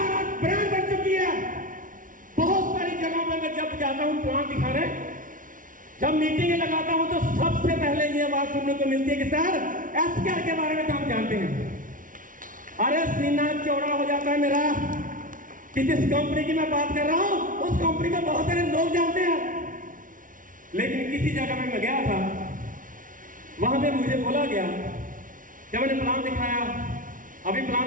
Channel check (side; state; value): left; late; 0.38 ms